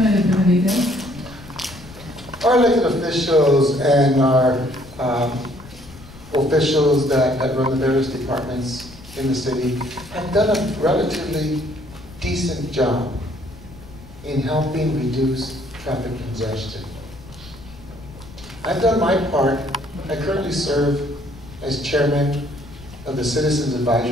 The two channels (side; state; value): left; noise; rumble, 19 dB below the sound